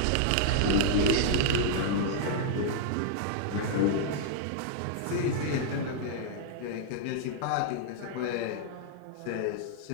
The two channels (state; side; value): different; both; correlation -0.01